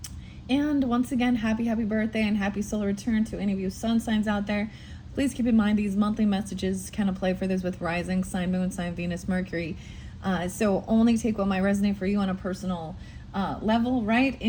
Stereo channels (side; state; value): both; identical; correlation 1.00